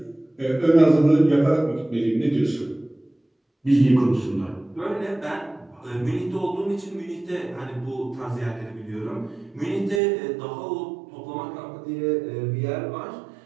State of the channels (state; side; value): drops out; left; at 10.0 s